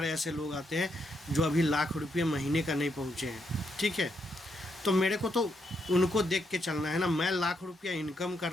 ऐसे लोग आते हैं जो अभी लाख रुपये महीने का नहीं पहुँचे हैं, ठीक है। तो मेरे को तो उनको देख के चलना है ना। मैं लाख रुपया इनकम कर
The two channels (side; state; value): both; normal; correlation 0.79